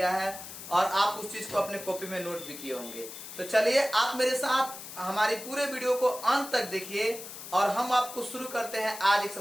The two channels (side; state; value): left; noise; hiss, 12 dB below the sound